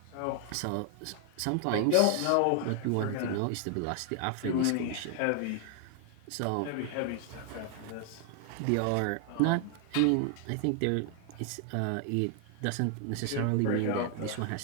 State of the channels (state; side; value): different; both; correlation 0.00